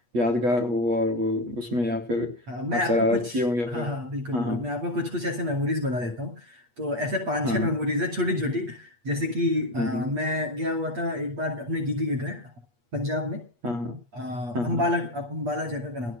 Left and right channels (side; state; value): left; late; 8.4 ms